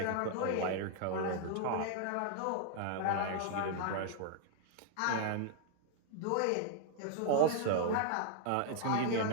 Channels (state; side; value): different; both; correlation -0.01